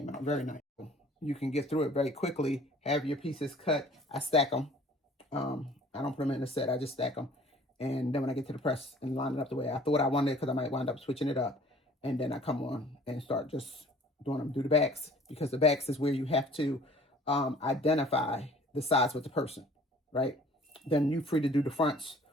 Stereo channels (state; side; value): normal; both; correlation 0.52